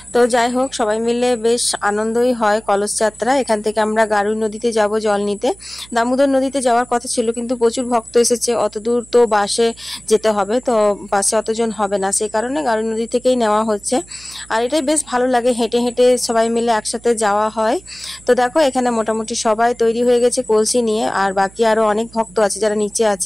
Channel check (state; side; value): noise; right; hum, 23 dB below the sound